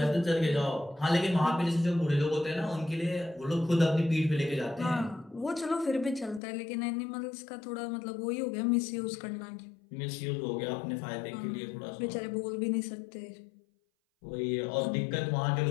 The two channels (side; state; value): right; drops out; at 6.4 s